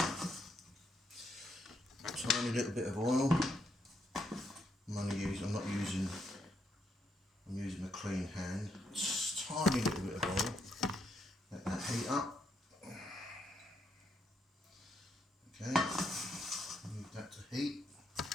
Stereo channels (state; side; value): normal; both; correlation 0.77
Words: tiny little bit of oil. I'm using a clean hand. Just tiny little bit of oil. Let that heat up. Okay, move that to heat.